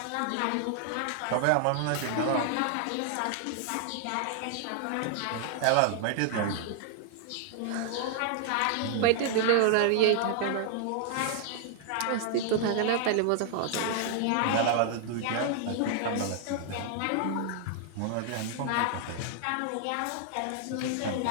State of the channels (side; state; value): both; different; correlation 0.00